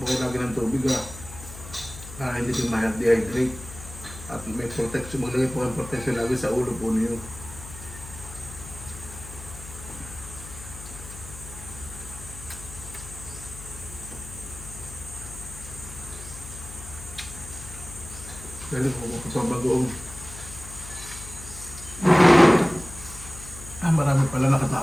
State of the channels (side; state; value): left; noise; hum, 13 dB below the sound